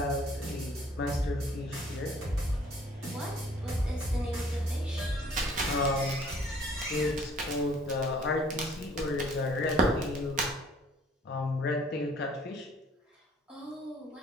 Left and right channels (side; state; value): both; normal; correlation 0.57